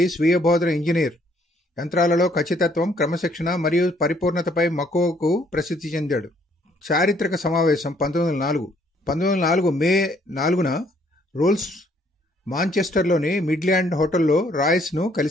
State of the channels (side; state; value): both; normal; correlation 0.66